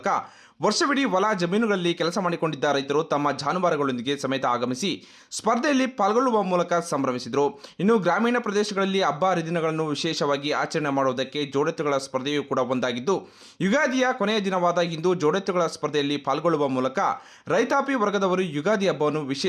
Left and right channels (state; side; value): identical; both; correlation 1.00